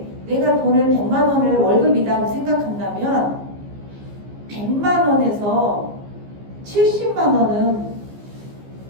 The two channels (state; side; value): late; left; 15 ms